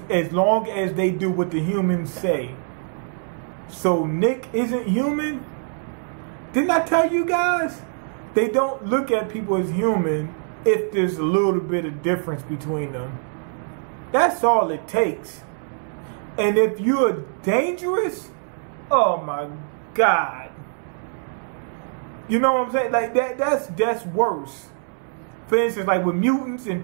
long as they do what the humans say. So Nick isn't human? Didn't I tell you guys? They don't look at people as human if there's a little bit of difference between them. That's all it takes. And if you're dangerous, oh my God. You know what I'm saying? Like that's worse. For instance, like with mutants and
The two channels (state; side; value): silent; left; 63 dB below the other